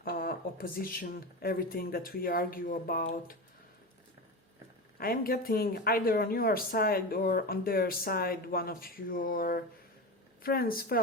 opposition, everything that we argue about. I am getting either on your side or on their side, one of your friends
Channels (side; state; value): both; normal; correlation 0.23